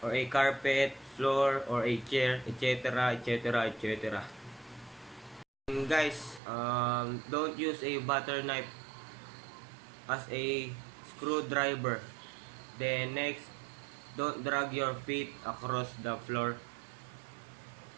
or a carpet, floor, or a chair, etc., etc., etc. And guys, don't use a butter knife as a screwdriver. Then next, don't drag your feet across the floor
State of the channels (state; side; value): drops out; left; at 6.4 s